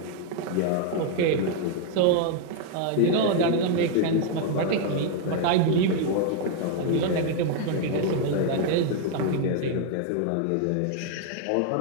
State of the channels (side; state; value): both; different; correlation 0.00